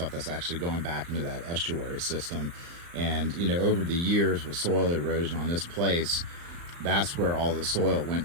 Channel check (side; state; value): left; late; 35 ms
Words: that's actually going back into that estuary system. And over the years with soil erosion on this place, that's where all the soil went